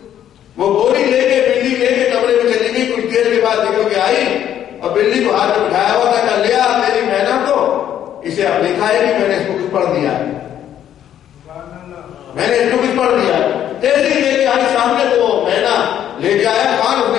وہ بوری لے کے بلی لے کے کمرے میں چلی گئی. کچھ دیر کے بعد دیکھو کہ آئی اور بلی کو ہاتھ میں بٹھایا ہوا تھا. کہا لیا میری مینا کو، اسے اب نہیں کھائے گی، میں نے اس کو کچھ پڑھ دیا، میں نے اس کو کچھ پڑھ دیا. تیزی لے کے آئی سامنے تو مینا لے کے آیا. خان اس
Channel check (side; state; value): right; quieter; 10.6 dB